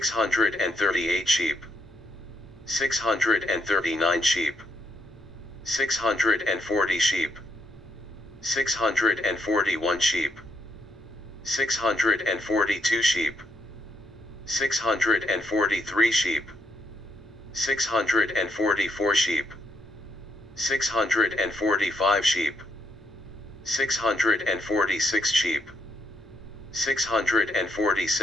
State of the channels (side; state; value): both; normal; correlation 0.76